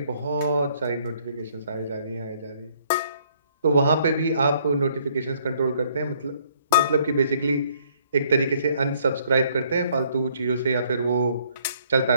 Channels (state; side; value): inverted; both; correlation -0.64